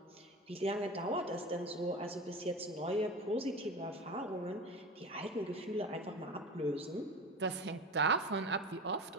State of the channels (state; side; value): normal; both; correlation 0.30